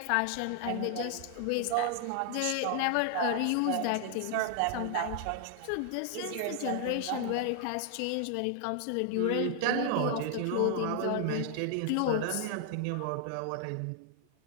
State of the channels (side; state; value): both; different; correlation 0.00